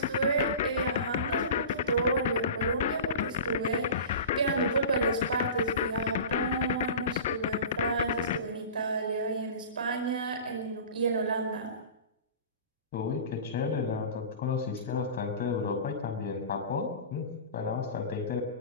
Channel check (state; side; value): inverted; both; correlation -0.34